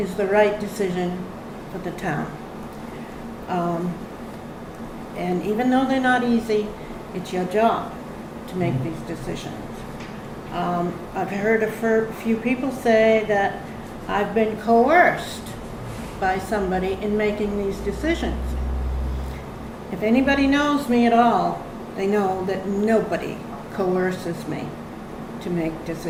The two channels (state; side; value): identical; both; correlation 1.00